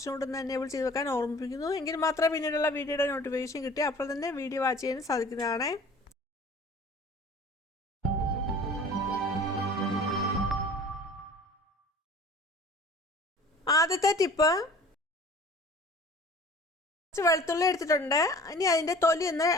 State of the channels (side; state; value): both; normal; correlation 0.46